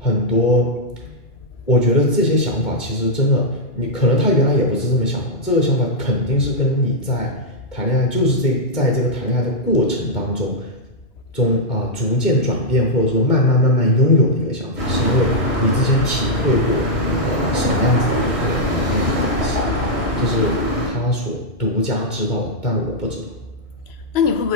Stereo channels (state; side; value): late; right; 2.2 ms